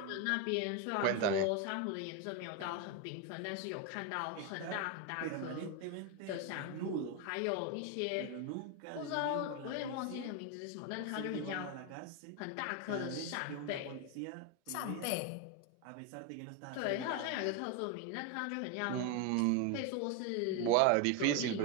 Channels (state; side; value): different; both; correlation 0.01